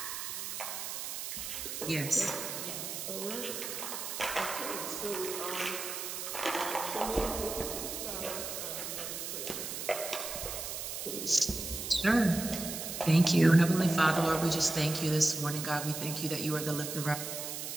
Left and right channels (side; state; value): right; noise; hiss, 5 dB below the sound